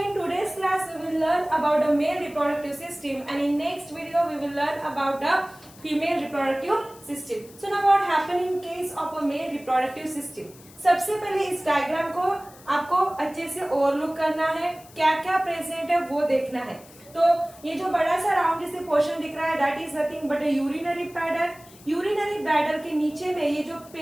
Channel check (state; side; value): noise; left; hiss, 23 dB below the sound